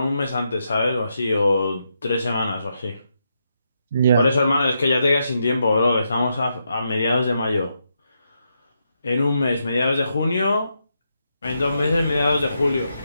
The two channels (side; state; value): both; inverted; correlation -0.82